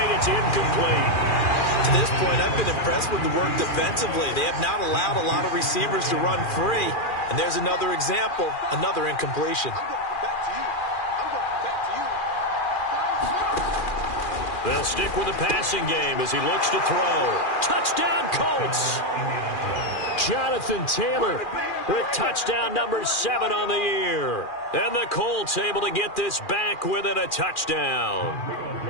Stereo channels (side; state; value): right; late; 2.4 ms